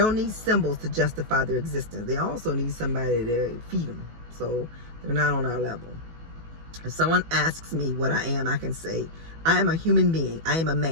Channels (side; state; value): left; late; 18 ms